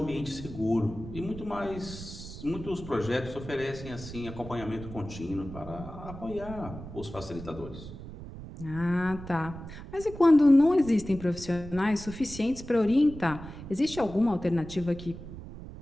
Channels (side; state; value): right; noise; rumble, 12 dB below the sound